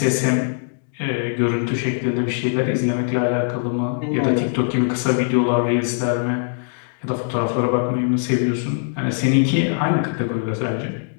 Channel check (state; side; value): silent; right; digital silence